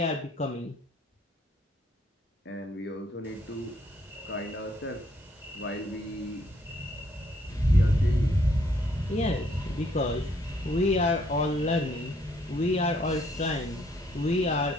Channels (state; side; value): normal; both; correlation 0.68